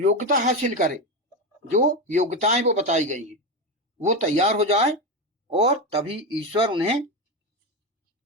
हासिल करे, जो योग्यताएं वो बताई गई हैं वो तैयार हो जाए, और तभी ईश्वर उन्हें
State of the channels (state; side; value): normal; both; correlation 0.15